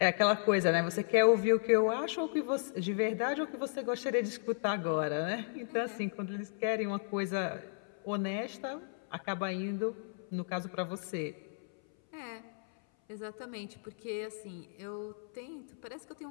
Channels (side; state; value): right; silent; 55 dB below the other